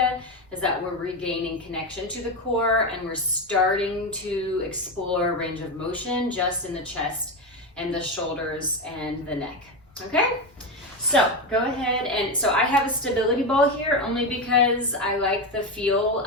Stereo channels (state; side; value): normal; both; correlation 0.15